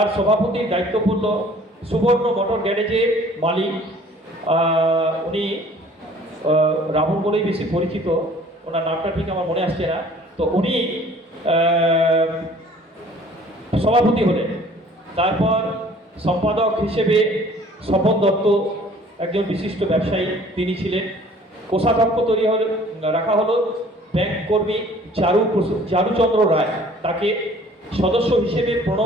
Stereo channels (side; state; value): both; normal; correlation 0.53